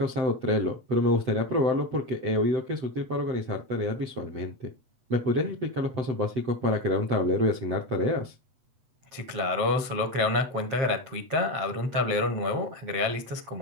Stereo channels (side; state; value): left; late; 8.0 ms